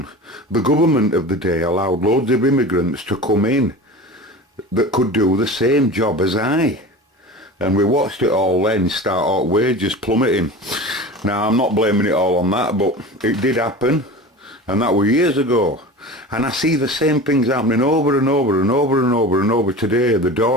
the government of the day allowed loads of immigrants to come in that could do the same job as I, and we watched it all then start out wages plummeting. Now, I'm not blaming it all on that, but it did happen, and that was years ago. And I see the same things happening over and over and over and over and over today. The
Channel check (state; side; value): normal; both; correlation 0.34